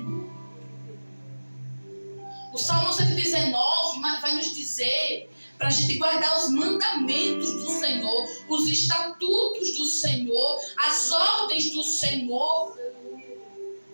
O Salmo 119 vai nos dizer para a gente guardar os mandamentos do Senhor, os estatutos do Senhor, as ordens do Senhor.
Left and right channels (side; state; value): both; inverted; correlation -1.00